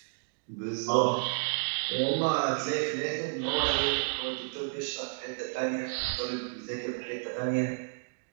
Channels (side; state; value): left; silent; digital silence